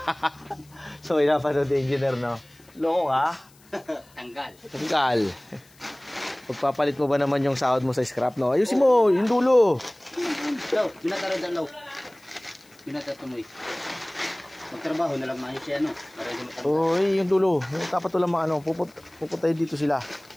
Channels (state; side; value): noise; left; hiss, 28 dB below the sound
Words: So, pinapanood yung engineer, no? Loko ka? Tanggal. Pagpapalit mo ba naman yung sahod mo sa scrap, no? Ayusin mo. Yung dulo. Law, binataro dyan, Law. Binatatumoy. Magtrabaho na lang maayos siya, no? Oy, yung dulo. Dapat walang mga ano. Pupuntahin dito sila.